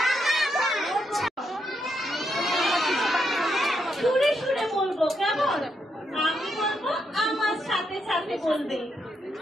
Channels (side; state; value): both; normal; correlation 0.80